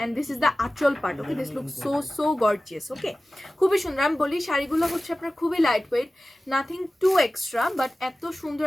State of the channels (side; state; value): both; normal; correlation 0.96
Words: এন্ড দিস ইজ দ্য আঁচল part okay this look so so gorgeous okay খুবই সুন্দর আমি বলি শাড়িগুলো হচ্ছে আপনার খুবই light weight nothing to extra but এত সুন্দর